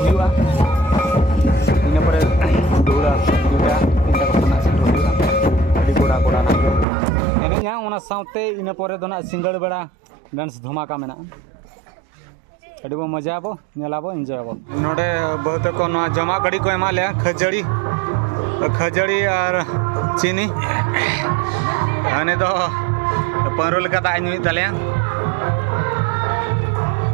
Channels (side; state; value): left; drops out; at 6.9 s